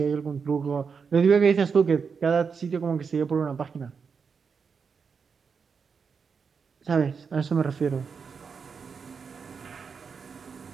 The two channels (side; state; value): left; quieter; 5.8 dB